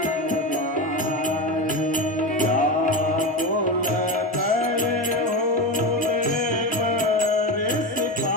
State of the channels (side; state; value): both; normal; correlation 0.20